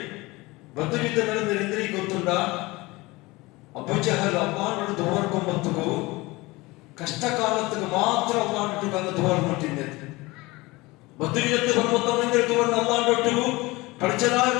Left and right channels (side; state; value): right; quieter; 22.0 dB